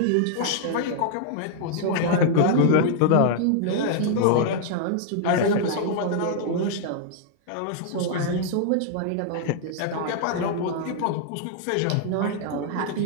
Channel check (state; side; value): different; both; correlation -0.01